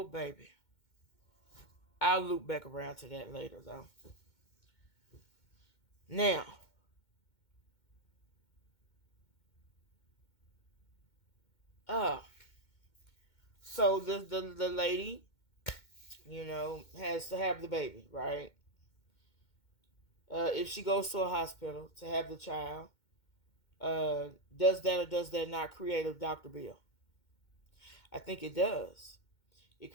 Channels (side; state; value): right; late; 2.2 ms